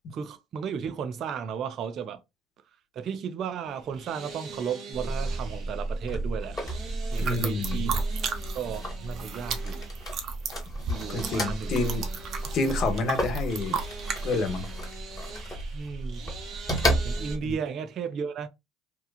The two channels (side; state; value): both; normal; correlation 0.68